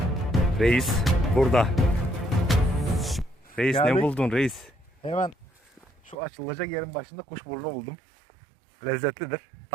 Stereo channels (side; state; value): left; drops out; at 6.2 s